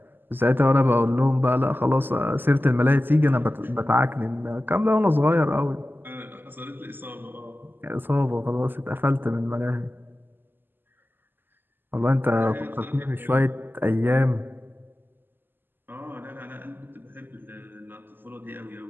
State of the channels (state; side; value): late; left; 0.094 ms